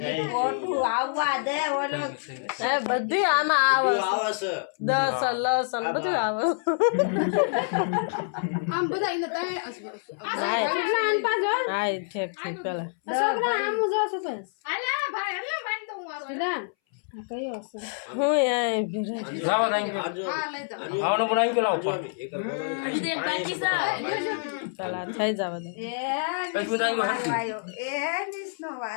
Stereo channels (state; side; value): silent; right; 60 dB below the other